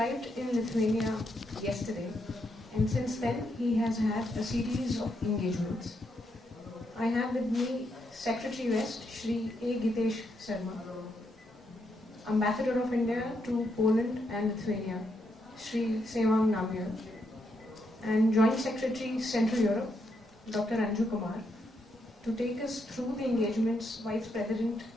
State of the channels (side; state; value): both; normal; correlation 0.79